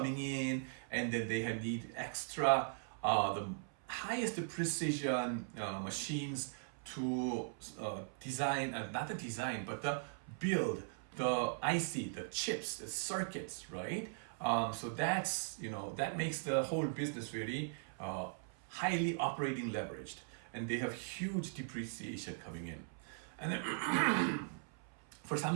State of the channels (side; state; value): left; silent; 51 dB below the other